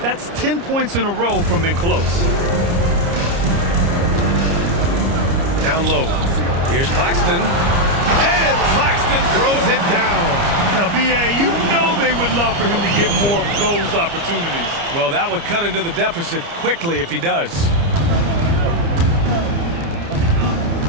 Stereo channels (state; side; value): late; left; 30 ms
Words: 10 points in a row from in close. Down low. Here's Claxton. And Claxton throws it down. Now, B.A., you know they would love for him to get more of those opportunities. Well, that would cut into the deficit quickly if he does.